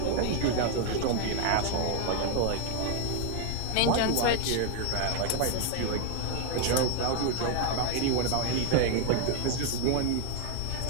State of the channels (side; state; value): both; different; correlation 0.00